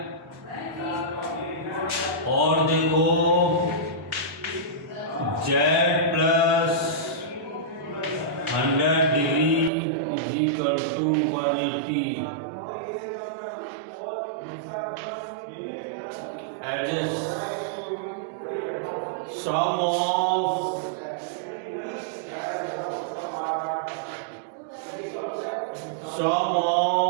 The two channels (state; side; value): drops out; left; at 9.7 s